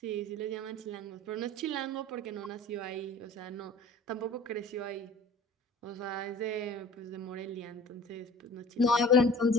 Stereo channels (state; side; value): normal; both; correlation 0.45